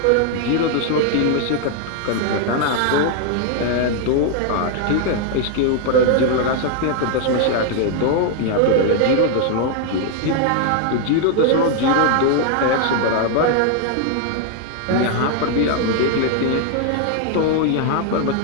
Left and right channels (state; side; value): different; both; correlation 0.00